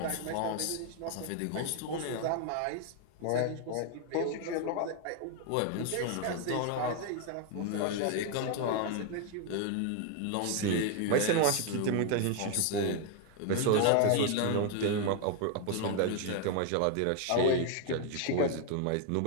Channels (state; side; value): different; both; correlation 0.01